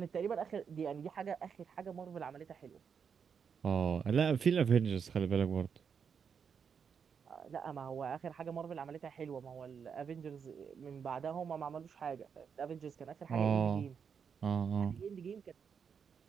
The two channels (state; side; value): quieter; left; 6.7 dB